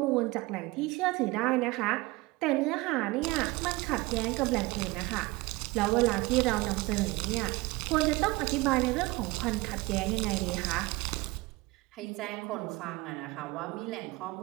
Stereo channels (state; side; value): quieter; left; 22.2 dB